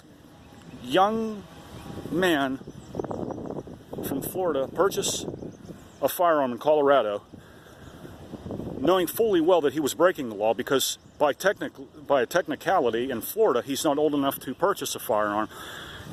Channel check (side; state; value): both; identical; correlation 1.00